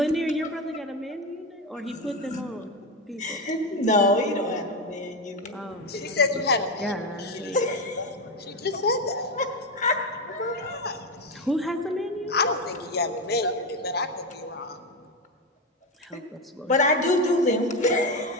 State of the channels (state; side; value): normal; both; correlation 0.13